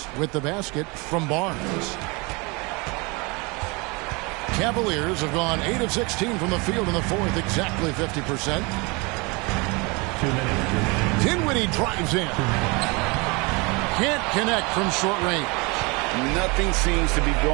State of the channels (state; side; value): quieter; left; 27.8 dB